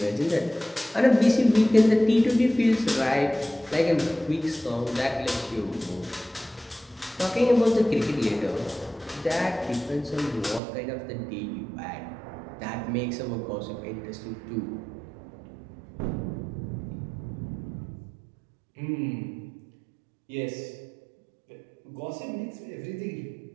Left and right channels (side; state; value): left; drops out; at 10.6 s